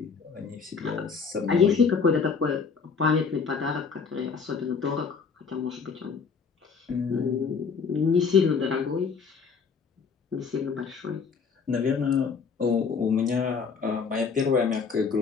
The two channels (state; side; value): quieter; right; 5.6 dB